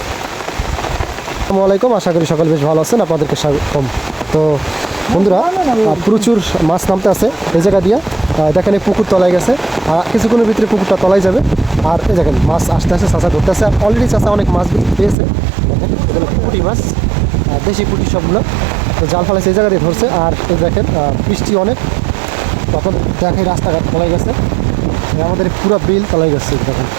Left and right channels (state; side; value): drops out; left; at 15.2 s